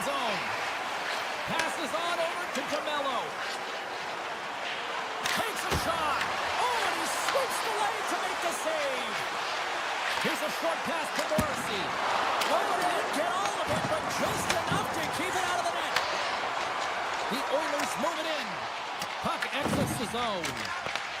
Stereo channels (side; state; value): both; identical; correlation 1.00